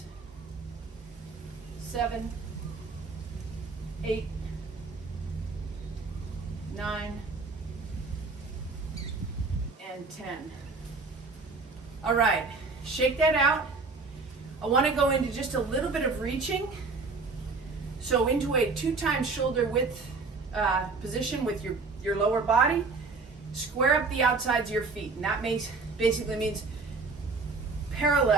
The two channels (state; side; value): quieter; left; 4.1 dB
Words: 7, 8, 9, and 10. All right, shake that out. I want to go into just a little bit of reaching. So into a 2 times shoulder width position with your lower body. Square up the outsides of your feet, and that basically means